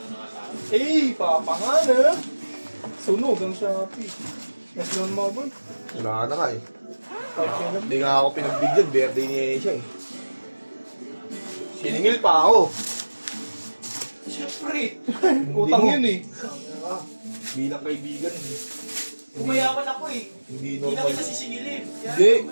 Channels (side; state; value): both; inverted; correlation -1.00